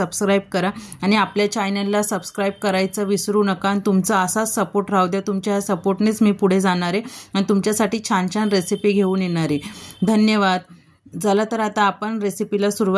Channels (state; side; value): identical; both; correlation 1.00